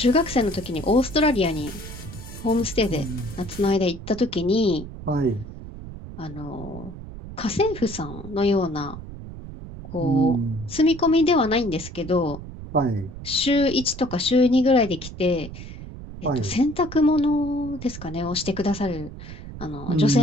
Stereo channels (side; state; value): right; noise; rumble, 12 dB below the sound